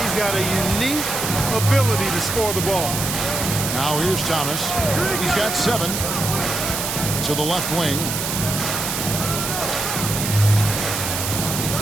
He's got a unique ability to score the ball. Now here's Thomas. He's got 7 to the left wing.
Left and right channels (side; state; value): right; noise; hiss, 3 dB below the sound